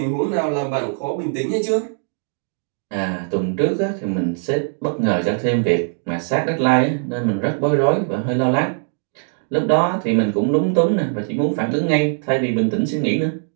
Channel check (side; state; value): left; silent; 65 dB below the other